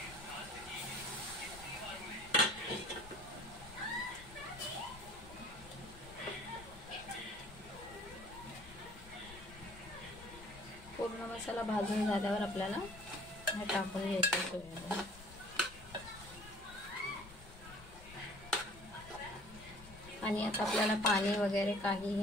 पूर्ण मसाला भाजून झाल्यावर आपल्याला हे टाकून घ्यायचं सोयाबीन। आणि आता आपल्याला पाणी वगैरे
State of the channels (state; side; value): noise; left; rumble, 17 dB below the sound